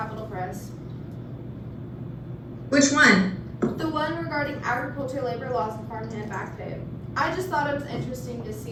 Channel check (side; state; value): both; identical; correlation 1.00